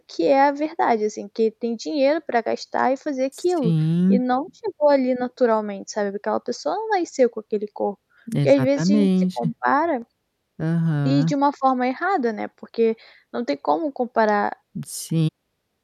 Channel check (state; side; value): identical; both; correlation 1.00